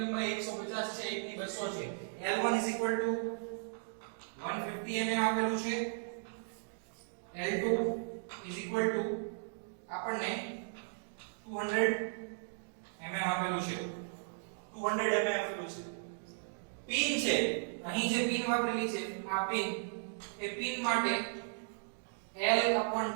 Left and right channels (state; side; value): silent; left; digital silence